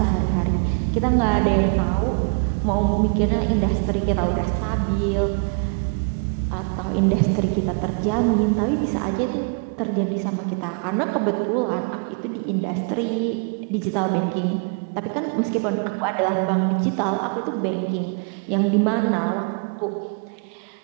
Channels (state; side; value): quieter; left; 39.0 dB